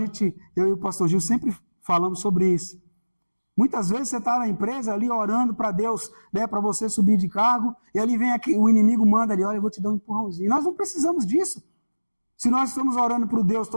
eu e o pastor Gil sempre falamos sobre isso. Muitas vezes você está na empresa ali orando para Deus, para você subir de cargo, e ali vem o inimigo manda ali, olha, eu vou te dar um empurrãozinho. Nós não precisamos disso. Se nós estamos orando para o Deus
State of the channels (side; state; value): both; inverted; correlation -1.00